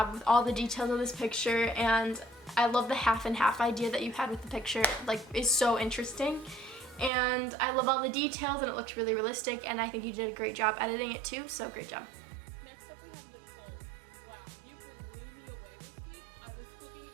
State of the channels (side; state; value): left; drops out; at 7.1 s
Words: with all the details of this picture, and I love the half and half idea that you had with the picture. Like, it's so interesting. And I love all the details, and it looks really realistic, and I think you did a great job editing it too, so great job.